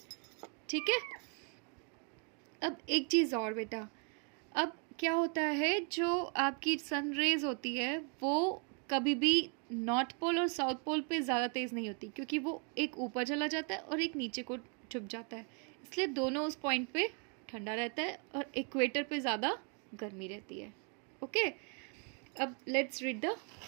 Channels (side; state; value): left; quieter; 38.0 dB